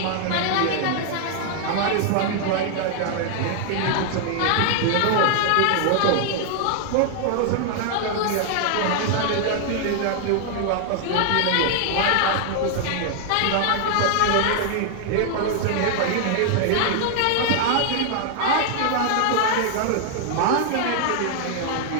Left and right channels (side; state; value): both; different; correlation 0.00